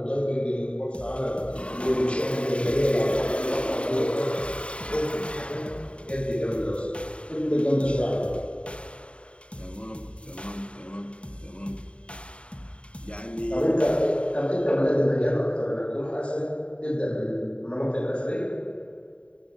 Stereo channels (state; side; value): late; right; 0.059 ms